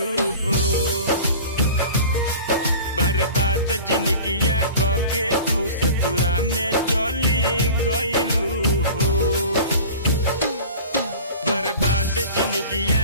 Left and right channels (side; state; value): both; inverted; correlation -0.39